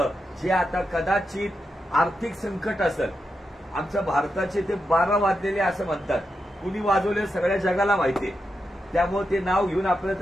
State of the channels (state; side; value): normal; both; correlation 0.87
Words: जे आता कदाचित आर्थिक संकट असेल. आमच्या भारताचे ते 12 वाजलेले असं म्हणतात. कुणी वाजवले सगळ्या जगाला माहितीये, त्यामुळे ते नाव घेऊन आपल्याला